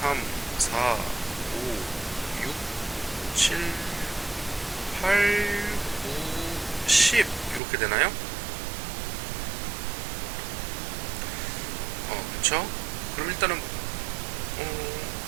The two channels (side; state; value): left; drops out; at 7.6 s